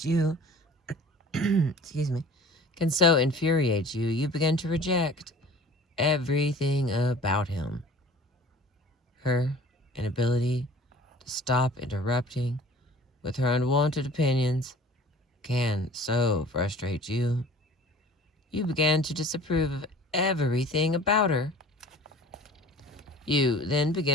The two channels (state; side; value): normal; both; correlation 0.45